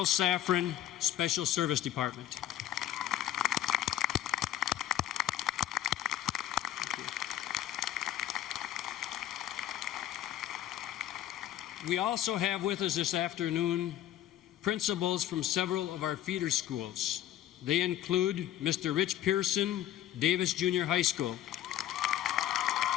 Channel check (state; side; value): quieter; right; 12.2 dB